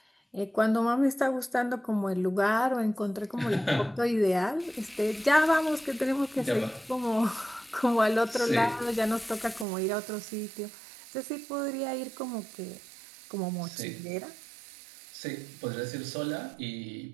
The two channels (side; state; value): left; drops out; at 9.7 s